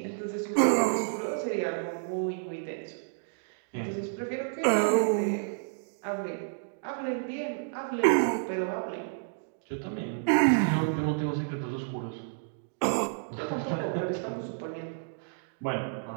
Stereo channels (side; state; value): left; silent; digital silence